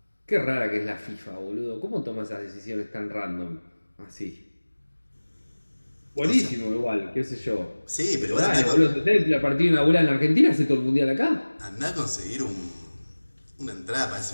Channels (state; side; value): inverted; both; correlation -1.00